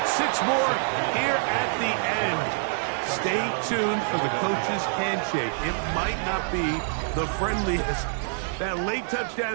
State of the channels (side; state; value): left; silent; digital silence